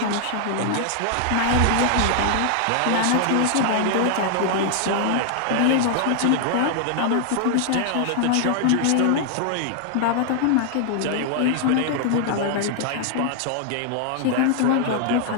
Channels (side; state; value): both; different; correlation 0.00